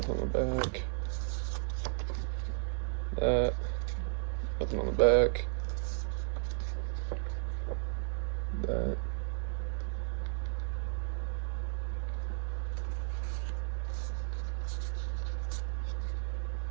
on the back. That. Nothing on the back. That.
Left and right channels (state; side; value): silent; left; digital silence